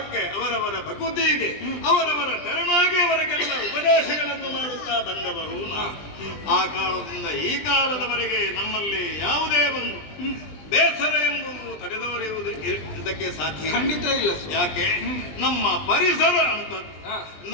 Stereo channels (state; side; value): late; right; 20 ms